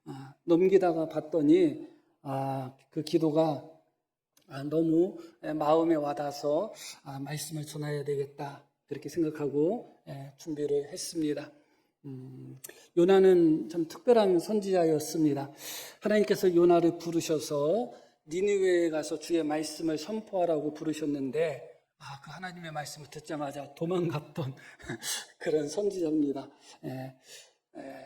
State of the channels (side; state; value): both; identical; correlation 1.00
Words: 넘기다가 봤더니 그 기도가 너무 마음에 와닿아서 말씀을 전해야 되겠다, 그렇게 생각하고 준비를 했습니다. 요나는 참 특별한 선지자였습니다. 하나님께서 요나를 부르셔서 니느웨에 가서 주의 말씀을 선포하라고 부르셨는데 그 하나님의 말씀을 듣자마자 도망갔던 그런 선지자입니다.